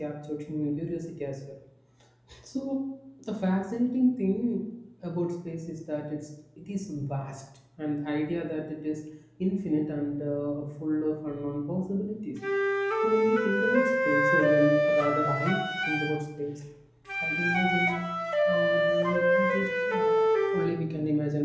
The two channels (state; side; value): identical; both; correlation 1.00